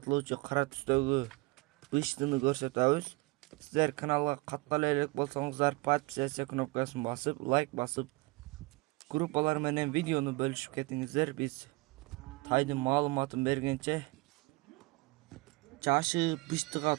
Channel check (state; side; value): quieter; left; 24.0 dB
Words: кара түстөгү быштыны көрсөтөбүз. Сиздер каналга каттала элек болсоңуздар, подписаться кнопкасын басып, лайк басып, группалар менен видеону бөлүшүп кетиңиздер. Биз тайдын маалыматын бергенче жашы быштыга